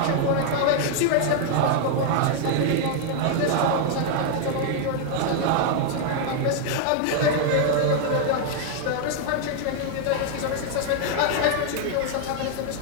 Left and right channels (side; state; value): both; different; correlation 0.00